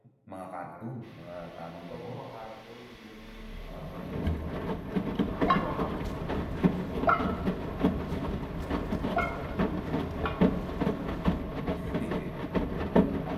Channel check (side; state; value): both; identical; correlation 1.00